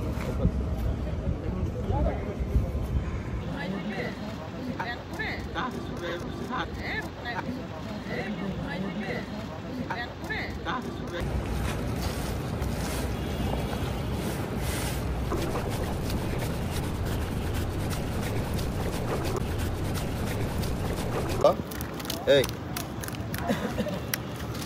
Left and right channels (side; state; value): both; identical; correlation 1.00